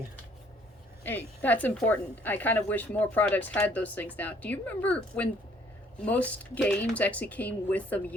Hey, that's important. I kind of wish more products had those things now. Do you remember when most games actually came with a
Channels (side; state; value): both; normal; correlation 0.61